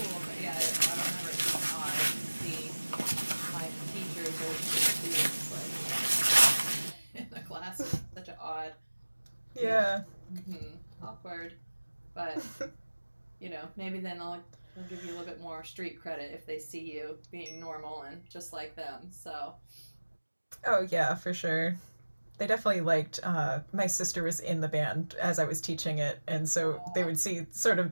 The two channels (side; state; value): both; inverted; correlation -1.00